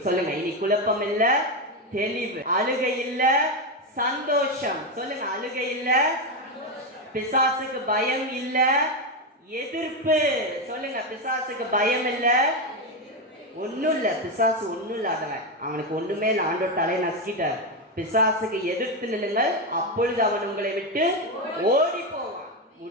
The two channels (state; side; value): normal; both; correlation 0.10